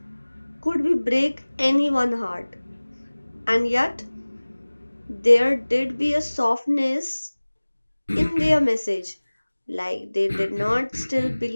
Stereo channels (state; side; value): inverted; both; correlation -1.00